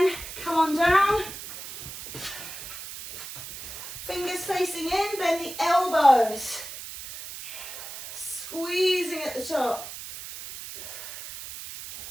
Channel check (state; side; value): noise; right; hiss, 11 dB below the sound